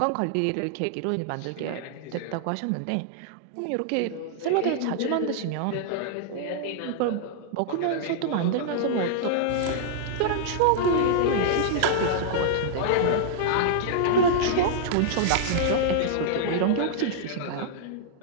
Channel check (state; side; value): different; both; correlation -0.01